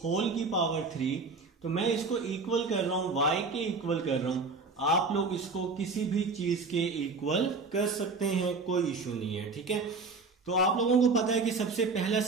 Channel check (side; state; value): left; quieter; 4.1 dB